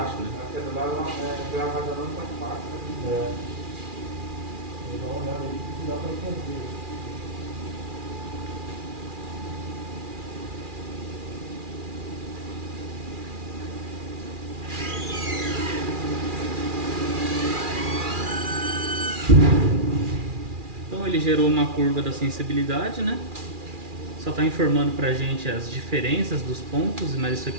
né? ele gerou uma curva da sensibilidade, né? Só está informando pra gente as diferenças dos pontos, mas isso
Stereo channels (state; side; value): late; left; 2.4 ms